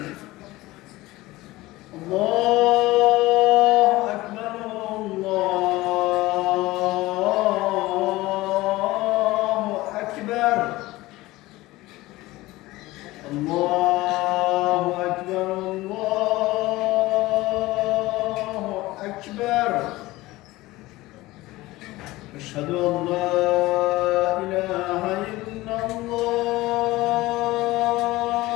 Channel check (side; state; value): right; quieter; 18.9 dB